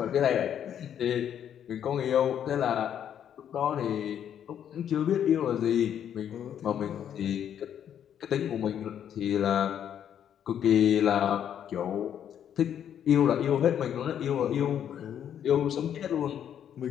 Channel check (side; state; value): right; quieter; 9.4 dB